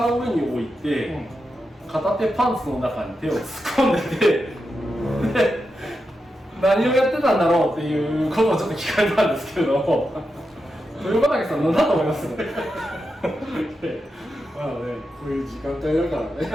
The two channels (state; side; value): normal; both; correlation 0.88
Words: の上に置いて、片手パンツの中に手を突っ込んでてで、何をやってたんだろうっていうことをちょっと聞かれたんですけれども、豊畑さん何だと思います？まあね、こういう時間帯だから